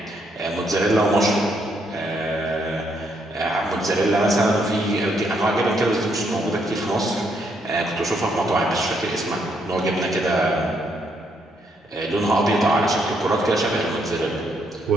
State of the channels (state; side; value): normal; both; correlation 0.74